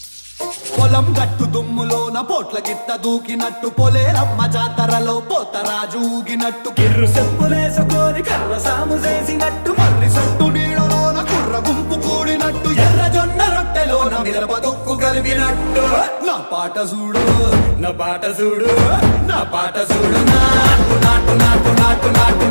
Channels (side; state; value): both; inverted; correlation -1.00